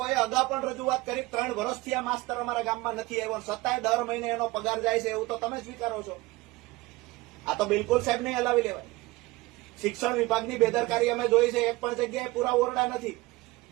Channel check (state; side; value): quieter; left; 20.9 dB